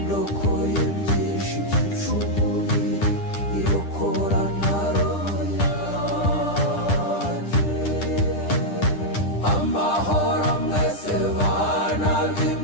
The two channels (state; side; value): late; right; 10 ms